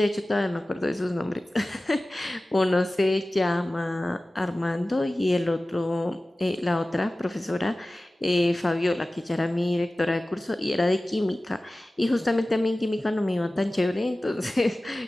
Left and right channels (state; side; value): normal; both; correlation 0.97